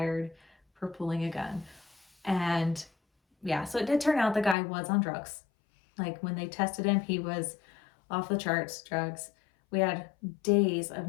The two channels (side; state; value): right; drops out; at 4.5 s